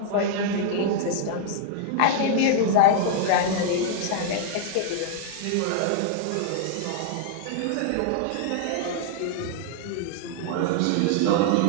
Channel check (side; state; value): both; different; correlation -0.01